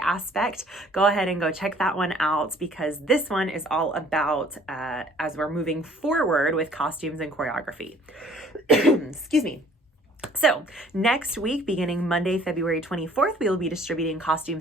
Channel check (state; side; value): normal; both; correlation 0.56